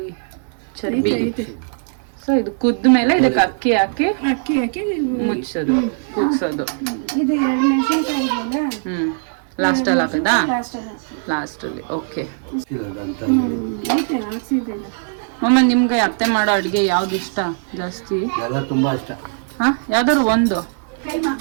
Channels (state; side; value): silent; left; 66 dB below the other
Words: ಚರ್ಬಿ. ಸೊ ಇದು ಕುದ್ದ ಮೇಲೆ ಇದಕ್ಕೆ ಅಕ್ಕಿ ಹಾಕಿ ಮುಚ್ಚೋದು, ಕುಗ್ಸೋದು. ಇದು 2 ಮೆಣಸಿನಕಾಯಿ ಇದೆಯಲ್ಲ, ಲಾಸ್ಟ್ ಅಲ್ಲಿ ಹಾಕದಾ? ಲಾಸ್ಟ್ ಲಾಸ್ಟ್ ಅಲ್ಲಿ. ಓಕೆ ಐತೆ ಹಾಕ್ಸಿದ್ದೆಲ್ಲ. ಮಮ್ಮ, ನಿಮ್ಗೆ ಅತ್ತೆ ಮಾಡೋ ಅಡ್ಗೆ ಯಾವ್ದು ಇಷ್ಟ ಜಾಸ್ತಿ? ಎಲ್ಲ ತುಂಬಾ ಇಷ್ಟ. ಹಾ, ಯಾವ್ದಾದ್ರು ಒಂದು